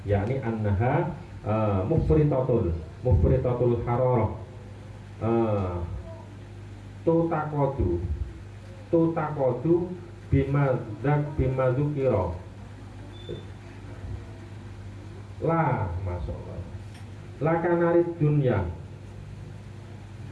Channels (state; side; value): identical; both; correlation 1.00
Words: yakni annaha mufritatul hararah, tutakodu bimadzukira la masyaallah la kanarid dunya